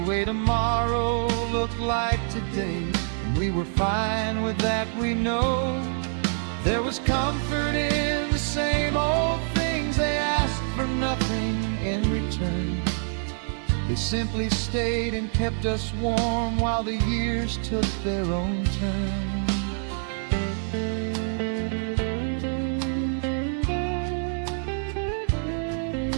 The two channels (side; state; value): left; silent; 55 dB below the other